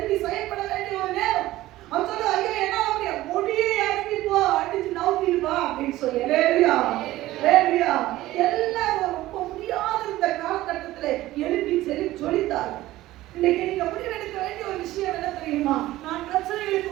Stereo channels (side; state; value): left; quieter; 16.3 dB